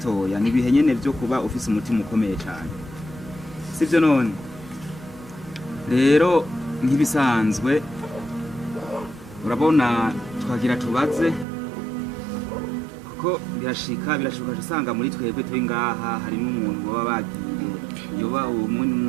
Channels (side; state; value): left; drops out; at 11.5 s